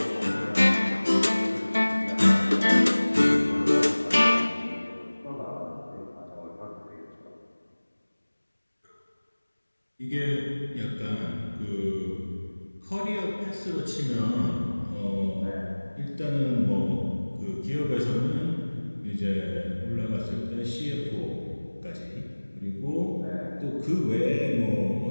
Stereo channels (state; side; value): inverted; both; correlation -1.00